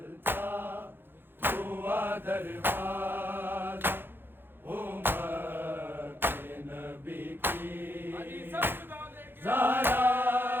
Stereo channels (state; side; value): late; left; 0.10 ms